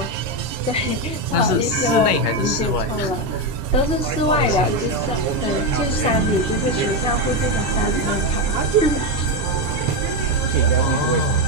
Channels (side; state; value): both; normal; correlation 0.09